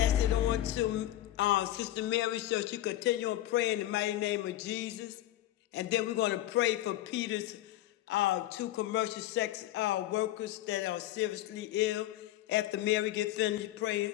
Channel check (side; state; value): right; quieter; 14.4 dB